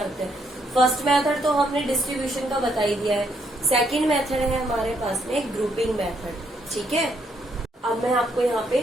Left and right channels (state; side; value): normal; both; correlation 0.73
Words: हैं। फर्स्ट मेथड तो हमने डिस्ट्रीब्यूशन का बता ही दिया है। सेकंड मेथड है हमारे पास में ग्रुपिंग मेथड। ठीक है, अब मैं आपको यहाँ पे